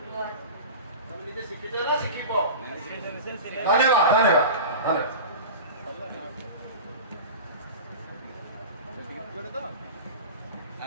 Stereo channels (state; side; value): inverted; both; correlation -0.32